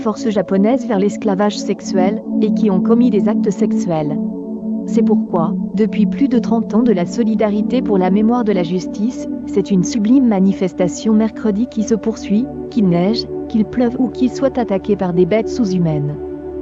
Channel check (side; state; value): both; identical; correlation 1.00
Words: japonaises vers l'esclavage sexuel et qui ont commis des actes sexuels. C'est pourquoi, depuis plus de 30 ans de la solidarité pour la mémoire de la justice, c'est une sublime manifestation mercredi qui se poursuit, qu'il neige, qu'il pleuve ou qu'il soit attaqué par des bêtes sous-humaines.